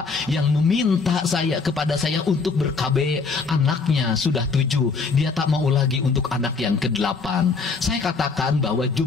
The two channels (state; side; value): quieter; right; 4.6 dB